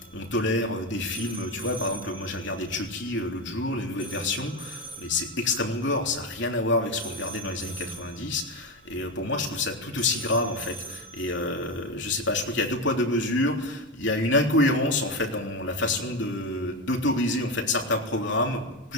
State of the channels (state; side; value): normal; both; correlation 0.15